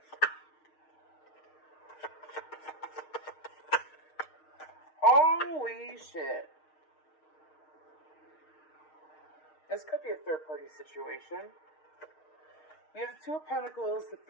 Holy shit. This could be a third-party situation. We have the Two of Pentacles.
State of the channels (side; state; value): right; late; 6.4 ms